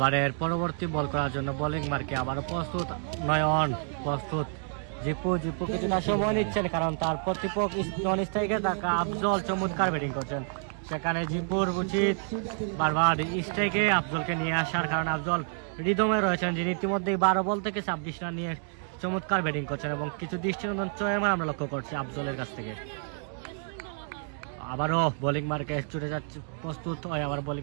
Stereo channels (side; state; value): left; silent; 59 dB below the other